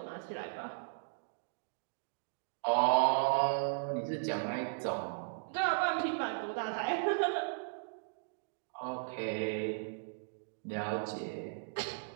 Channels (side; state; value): left; silent; digital silence